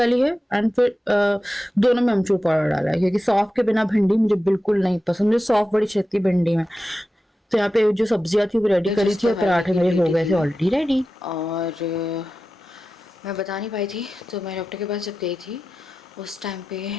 है एंड फिर दोनों में अमचूर पाउडर डाला है क्योंकि सौंफ के बिना भिंडी मुझे बिल्कुल नहीं पसंद। मुझे सौंफ बड़ी छेती भिंडी में। तो यहाँ पे जो सब्जियां थी वो रेडी करी जिस थी और दवाई पराठे की मेरे हो लेटी गए थे थी ऑलरेडी रेडी। और मैं बता नहीं पाई थी, तो मैं डॉक्टर के पास जब गई थी उस टाइम पे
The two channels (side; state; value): both; normal; correlation 0.93